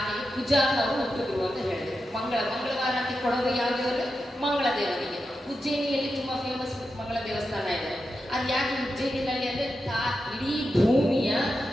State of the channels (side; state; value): both; normal; correlation 0.89